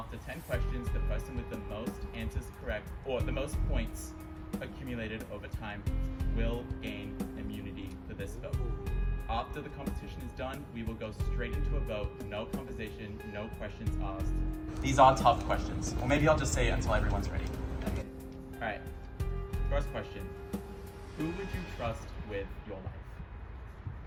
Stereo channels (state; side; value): identical; both; correlation 1.00